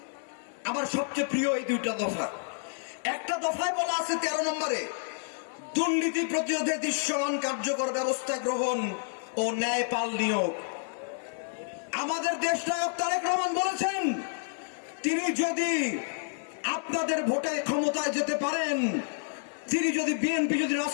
আমার সবচেয়ে প্রিয় এই দুইটা দফা। একটা দফায় বলা আছে ১৩ নম্বরে, দুর্নীতি প্রতিরোধে দৃশ্যমান কার্যকর ব্যবস্থা গ্রহণ ও ন্যায়পাল নিয়োগ। আমাদের দেশনায়ক তারেক রহমান বলেছেন, তিনি যদি আপনাদের ভোটে ক্ষমতায় যেতে পারেন, তিনি যদি বিএনপি যদি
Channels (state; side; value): silent; right; 58 dB below the other